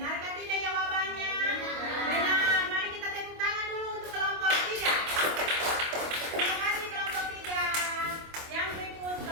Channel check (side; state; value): left; late; 25 ms